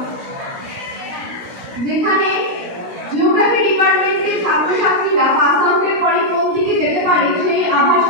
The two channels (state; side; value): late; left; 16 ms